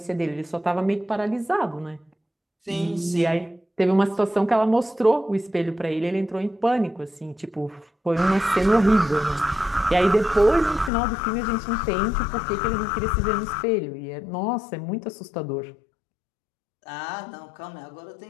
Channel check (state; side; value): drops out; right; at 10.9 s